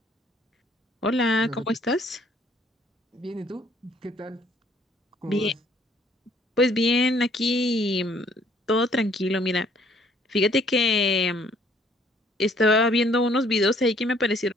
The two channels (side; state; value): both; normal; correlation 0.62